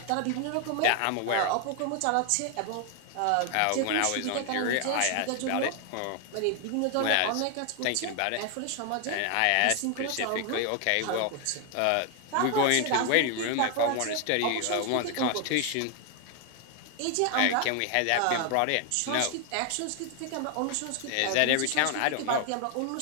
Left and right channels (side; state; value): both; different; correlation 0.00